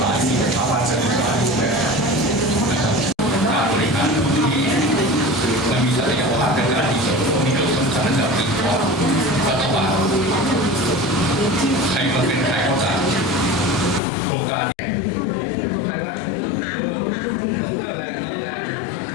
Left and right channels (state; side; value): drops out; right; at 14.0 s